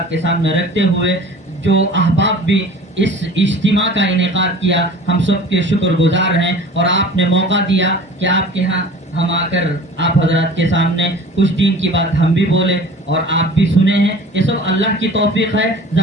کے سامنے رکھتے ہوئے، جو احباب بھی اس اجتماع کا انعقاد کیا، ہم سب کے شکر گزار ہیں، اور آپ نے موقع دیا کہ آپ کے ہاں ہم آ کر آپ حضرات کے سامنے کچھ دین کی بات ہم بھی بولے اور آپ بھی سنے ہیں. یہ سب اللہ کی توفیق ہے.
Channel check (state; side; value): normal; both; correlation 0.43